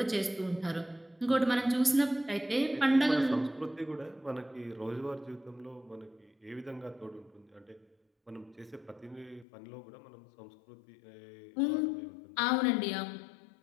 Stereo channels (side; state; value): right; drops out; at 9.5 s